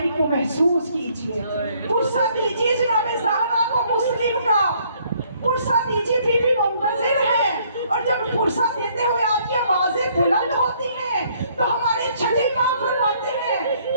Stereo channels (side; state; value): both; inverted; correlation -0.65